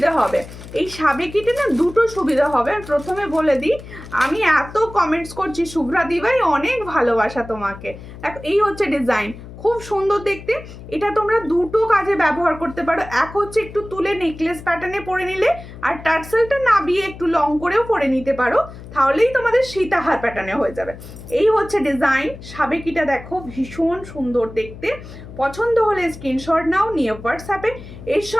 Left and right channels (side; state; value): left; noise; hum, 15 dB below the sound